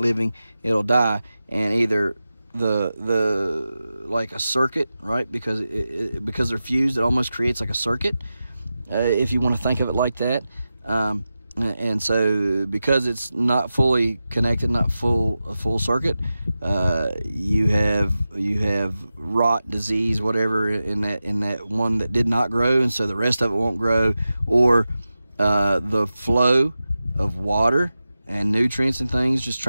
it'll die, and either the like a circuit, right? Because because they're fused, it almost creates like a circuit, if you want to think of it like that. And so because it's not fully connected, not a full circuit, you have rot, disease, whatever in that one that did not grow, and so the rest of it won't grow, or the flow of water and nutrients and things just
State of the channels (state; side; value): inverted; both; correlation -0.93